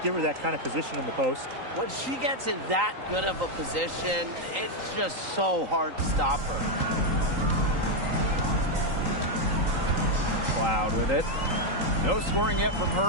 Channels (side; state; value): left; late; 3.8 ms